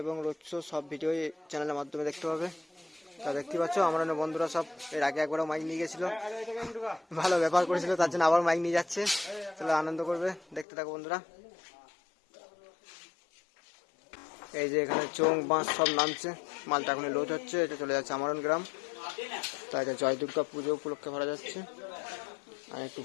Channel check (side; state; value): right; drops out; at 10.7 s